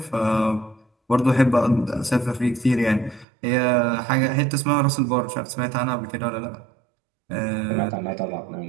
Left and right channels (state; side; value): drops out; left; at 3.2 s